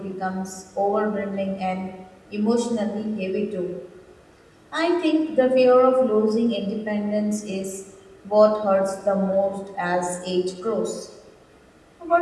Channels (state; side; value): identical; both; correlation 1.00